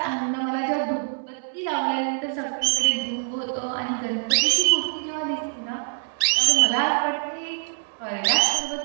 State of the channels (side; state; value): left; silent; digital silence